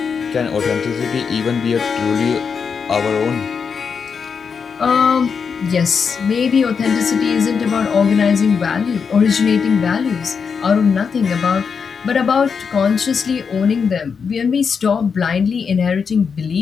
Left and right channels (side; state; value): right; quieter; 6.0 dB